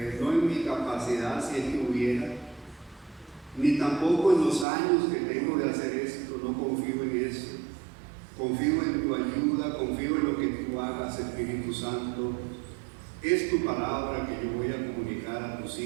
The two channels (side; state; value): left; drops out; at 4.7 s